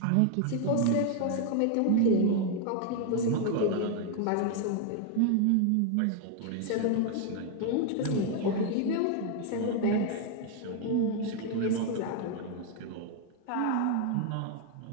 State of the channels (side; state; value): both; different; correlation 0.00